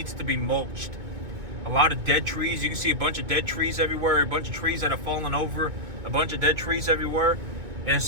to be mulched. A lot of dead trees. You can see a bunch of dead trees everywhere. A bunch of trees that have fallen over. A bunch of dead trees everywhere. And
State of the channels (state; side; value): late; left; 2.2 ms